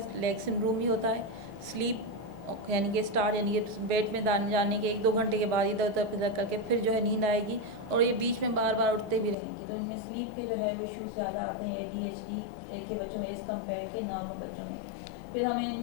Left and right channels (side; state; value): right; drops out; at 9.3 s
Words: लेग सिंड्रोम भी होता है। स्लीप यानी कि स्टार्ट, यानी कि बेड में जाने के 1-2 घंटे के बाद इधर उधर फिर करके फिर जो है नींद आएगी, और ये बीच में बार बार उठते भी रहेंगी। तो इनमें स्लीप के जो है वो इश्यूज़ ज़्यादा आते हैं एडीएचडी के बच्चों में एज़ कम्पेयर के नॉर्मल बच्चों में। फिर हमें